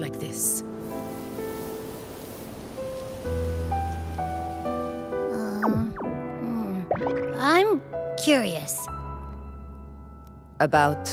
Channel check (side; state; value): both; identical; correlation 1.00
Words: this. I'm curious. About